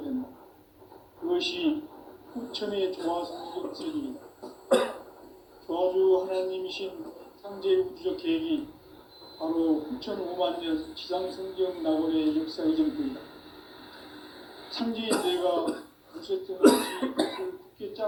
된다. 그것이 후천의 조화성적 세계이다. 조화주 하나님이신 상제의 우주적 계획이 바로 후천 5만 년 지상성경 낙원의 역사 이전부이다. 상제의 내가 무쇠등 없이 것을 굳게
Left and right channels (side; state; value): both; identical; correlation 1.00